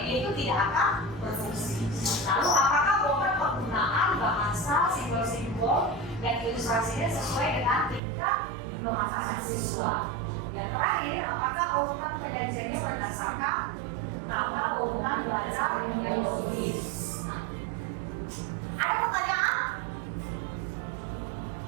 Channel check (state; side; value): drops out; left; at 8.0 s